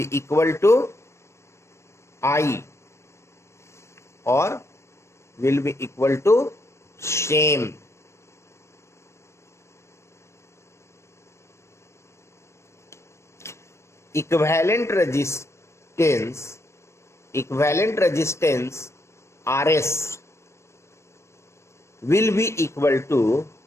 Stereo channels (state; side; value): late; right; 0.13 ms